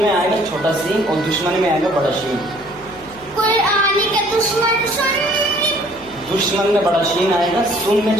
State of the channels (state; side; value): noise; left; hum, 23 dB below the sound